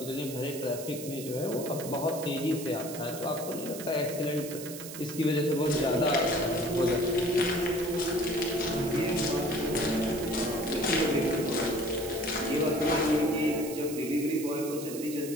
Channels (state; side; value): noise; right; hiss, 11 dB below the sound